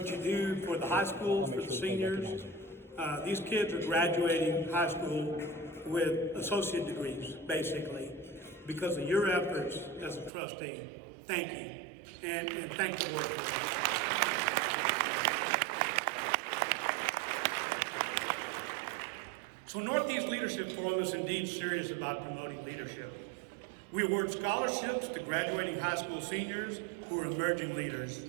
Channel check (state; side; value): drops out; left; at 10.3 s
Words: you do for the high schools, for the seniors. These kids are graduating high school with associate degrees, basically, because of your efforts as a trustee. Thank you, and thank the Lord for it. So Northeast Leadership Forum is indeed serious about promoting leadership. We award scholarships to graduating high school seniors who are emerging leaders.